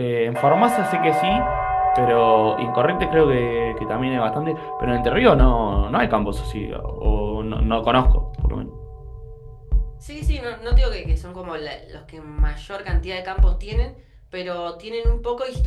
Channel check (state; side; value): identical; both; correlation 1.00